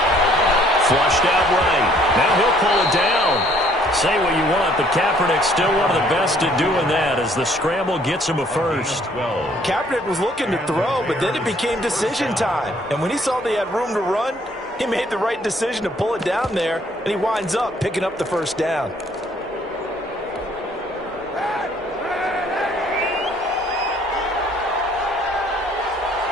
Flushed out right. Now he'll pull it down. Say what you want, but Kaepernick's still one of the best at doing that as the scramble gets him a first. Kaepernick was looking to throw, but then it became decision time. And when he saw they had room to run, he made the right decision to pull it down there, and he winds up picking up the first down.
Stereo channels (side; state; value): both; normal; correlation 0.62